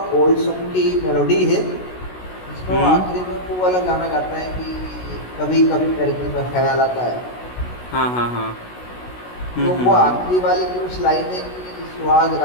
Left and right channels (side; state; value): right; late; 16 ms